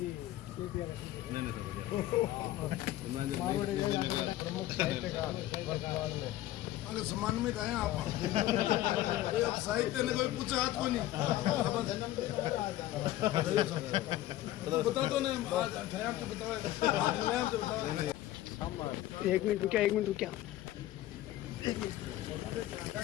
प्रमुख साहित्यकार वर्तमान में अगर सम्मानित आए आप अब साहित्य ने कोई पूछा हाथ को नहीं बता दो ना आज ठहर तो बताओ एक मिनट रुकिया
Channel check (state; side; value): quieter; right; 14.6 dB